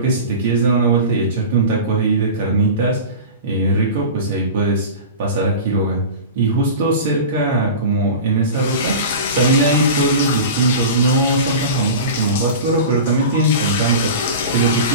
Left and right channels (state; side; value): inverted; both; correlation -0.32